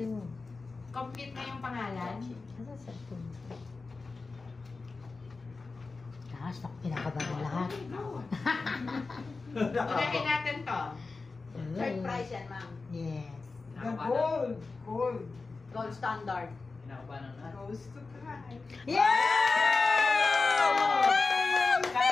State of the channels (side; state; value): right; quieter; 4.0 dB